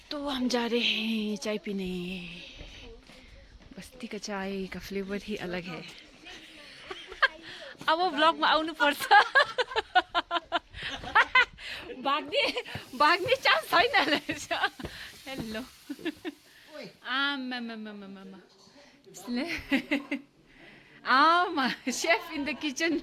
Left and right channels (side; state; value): both; identical; correlation 1.00